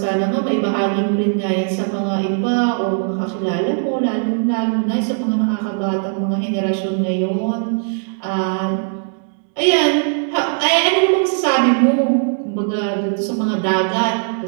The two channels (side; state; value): left; silent; 62 dB below the other